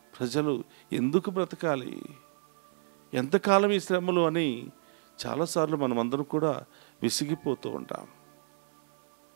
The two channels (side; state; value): left; silent; 57 dB below the other